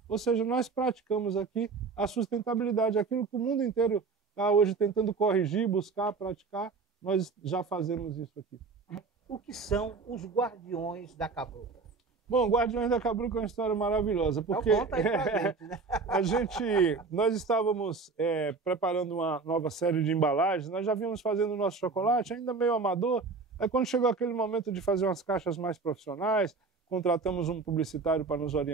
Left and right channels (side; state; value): left; quieter; 4.4 dB